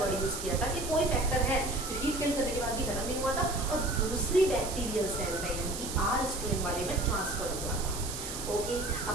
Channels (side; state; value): right; noise; hiss, 7 dB below the sound